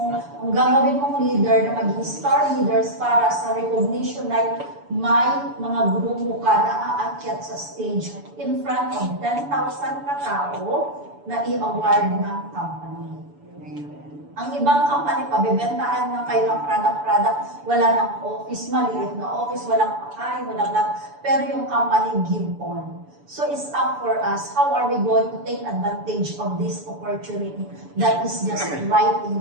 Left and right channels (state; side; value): late; left; 7.0 ms